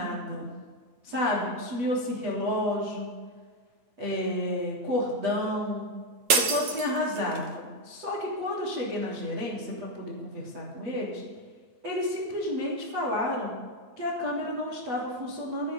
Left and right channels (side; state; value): left; late; 9.1 ms